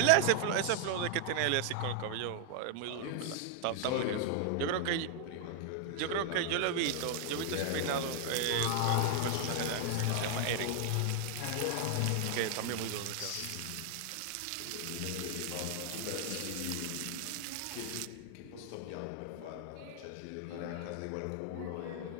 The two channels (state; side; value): different; both; correlation 0.00